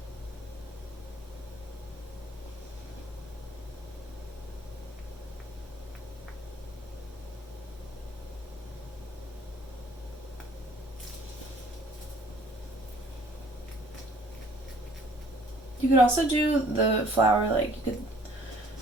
You could also do the flower, like you could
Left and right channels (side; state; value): both; normal; correlation 0.56